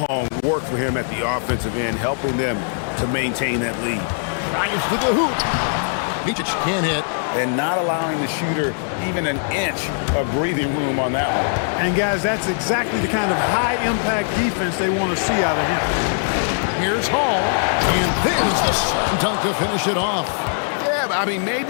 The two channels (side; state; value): right; silent; 65 dB below the other